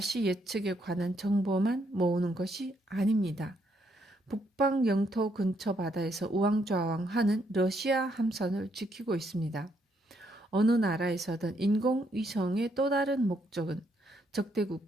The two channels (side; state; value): both; normal; correlation 0.74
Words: 예측에 관한 정보만 모으는 것이 아닙니다. 북방 영토 근처 바다에서 우왕좌왕하는 러시아 함선을 지키고 있습니다. 어느 나라에서든 인공위성의 또 다른 목적은 적대